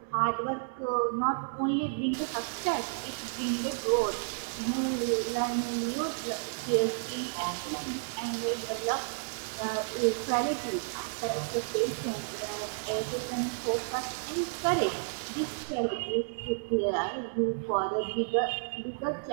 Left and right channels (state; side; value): silent; left; digital silence